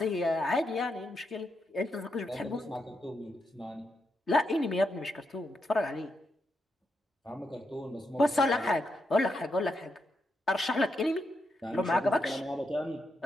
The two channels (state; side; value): normal; both; correlation 0.83